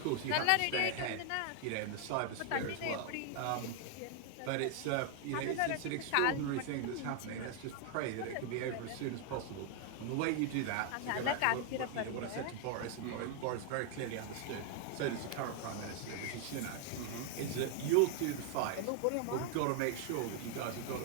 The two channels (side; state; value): both; different; correlation 0.00